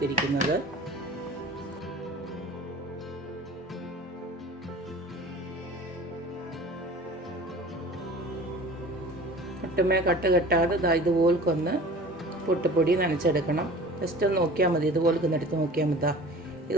ഒട്ടുമേ കട്ട് കെട്ടാതെ ഇതുപോലൊന്ന് പുട്ടുപൊടി നനച്ചെടുക്കണം. ജസ്റ്റ് ഒന്ന് നോക്കിയാൽ മതി, ഇതുപോലെ എടുത്ത് നോക്കിയാൽ മതി.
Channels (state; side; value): normal; both; correlation 0.42